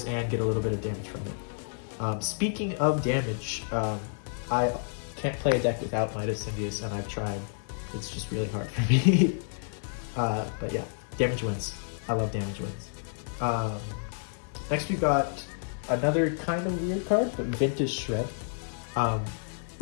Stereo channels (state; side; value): silent; right; digital silence